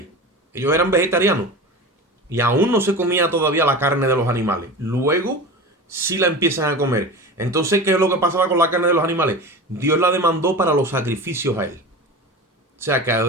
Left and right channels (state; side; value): normal; both; correlation 0.31